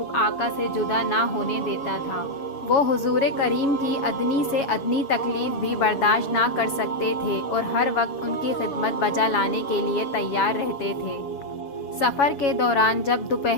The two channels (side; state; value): right; late; 7.3 ms